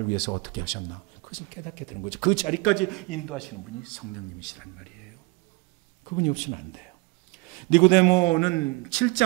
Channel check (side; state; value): left; quieter; 24.3 dB